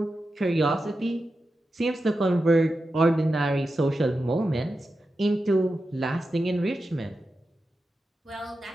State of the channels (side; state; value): both; normal; correlation 0.91